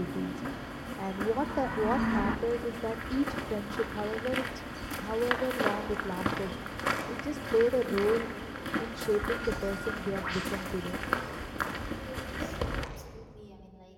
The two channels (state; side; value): identical; both; correlation 1.00